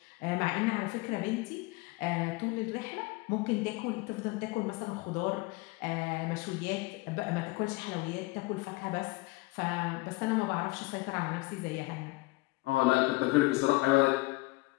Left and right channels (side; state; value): right; quieter; 22.7 dB